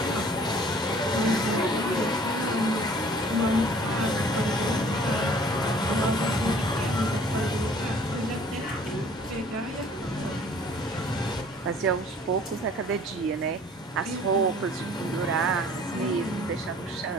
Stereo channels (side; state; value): both; normal; correlation 0.53